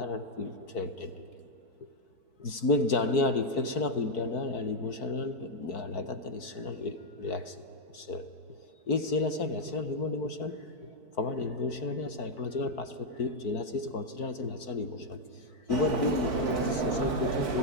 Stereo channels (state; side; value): late; right; 4.6 ms